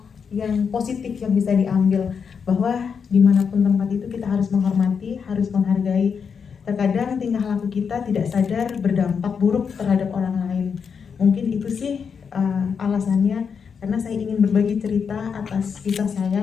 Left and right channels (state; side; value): quieter; right; 6.3 dB